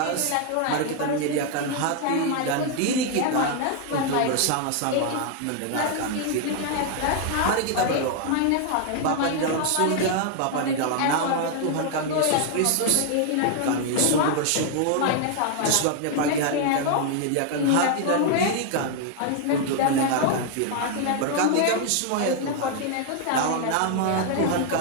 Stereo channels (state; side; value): different; both; correlation 0.00